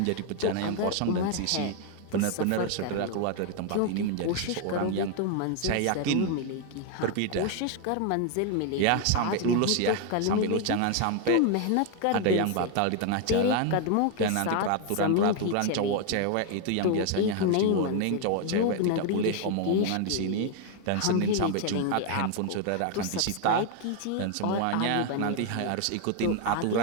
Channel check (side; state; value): both; different; correlation 0.01